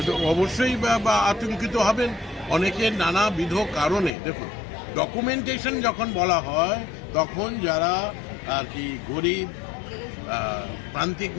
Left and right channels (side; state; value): right; drops out; at 4.1 s